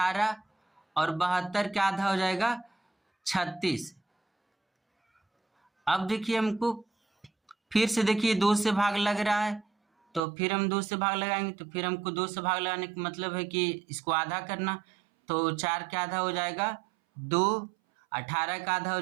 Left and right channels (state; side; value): drops out; left; at 10.2 s